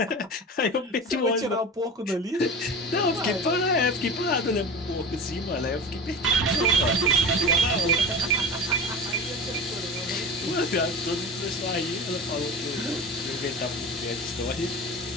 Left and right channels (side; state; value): both; normal; correlation 0.31